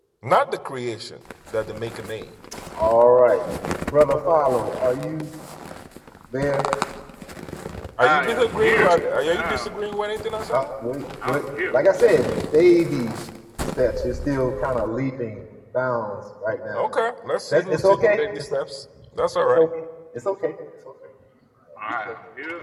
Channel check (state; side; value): identical; both; correlation 1.00